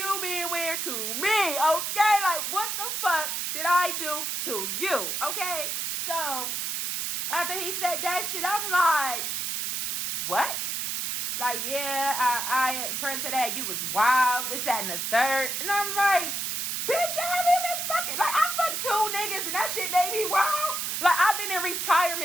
being weird to me, okay? Like, what the fuck did I do to you, okay? So, after he said that shit, I'm like, what? Like, yeah, I friend said that you was wild, this, that, and the third. And I'm like, bitch, I haven't been fucking. Like, I fucked 2 niggas and that shit made me wild. Like, I've been in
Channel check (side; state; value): right; noise; hiss, 2 dB below the sound